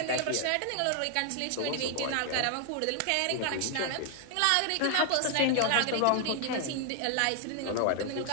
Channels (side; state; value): both; different; correlation 0.00